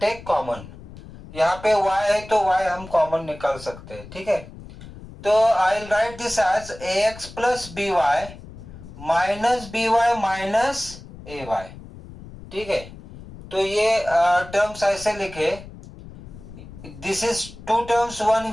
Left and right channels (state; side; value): noise; left; rumble, 16 dB below the sound